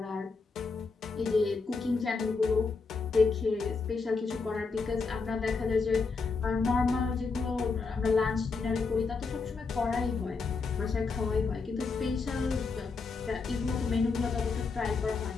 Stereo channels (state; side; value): quieter; right; 4.5 dB